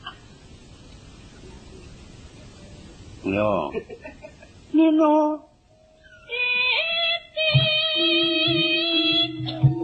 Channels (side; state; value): both; identical; correlation 1.00